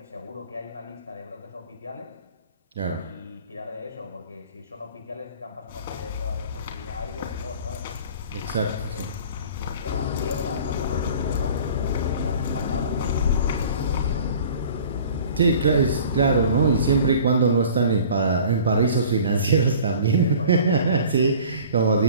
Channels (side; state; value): both; inverted; correlation -0.46